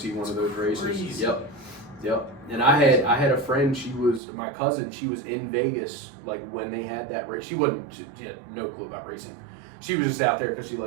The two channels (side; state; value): left; drops out; at 4.2 s